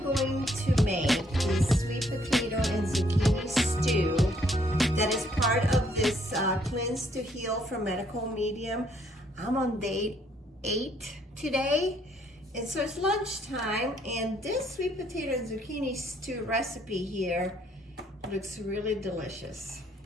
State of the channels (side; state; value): both; normal; correlation 0.68